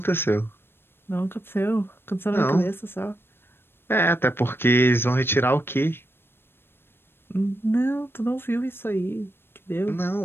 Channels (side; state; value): right; late; 0.11 ms